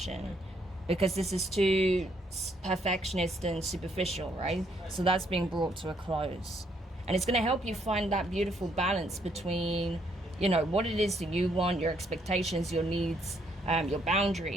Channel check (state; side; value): normal; both; correlation 0.71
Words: because this is too perfectionist and superficial, right? So that's being brought to a close. And it's going to help you find that beautiful balance between, you know, what it is that you want, your expectations, your needs, your